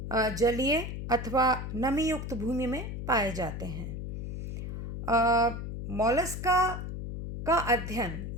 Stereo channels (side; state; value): left; noise; hum, 6 dB below the sound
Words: जलीय अथवा नमी युक्त भूमि में पाए जाते हैं। मोलस्का का अध्ययन